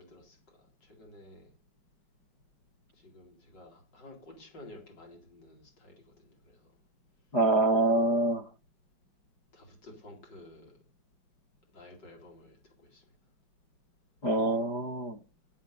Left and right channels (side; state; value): right; late; 5.0 ms